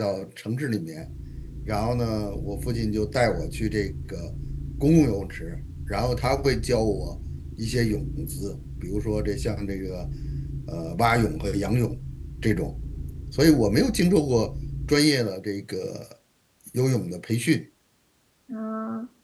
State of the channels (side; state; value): both; identical; correlation 1.00